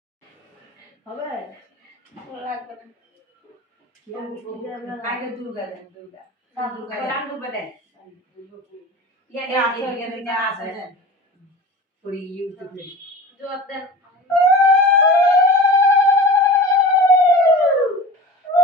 হবে লাগবে না আগে দুর্গা দেন দুর্গা দুর্গা রাম দুর্গা দেন ইয়ানে আছে ইয়ানে আছে পুরি ইউটিউবে জবাব দেন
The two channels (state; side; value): normal; both; correlation 0.35